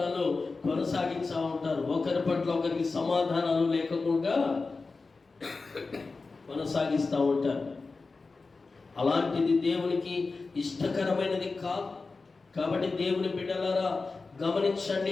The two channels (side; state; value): right; quieter; 4.0 dB